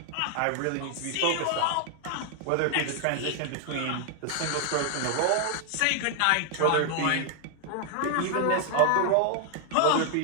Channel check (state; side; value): different; both; correlation 0.00